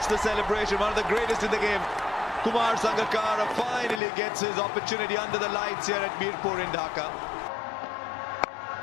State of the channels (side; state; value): right; drops out; at 4.0 s